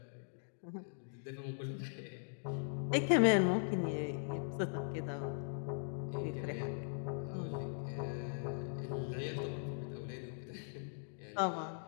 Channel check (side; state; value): right; silent; digital silence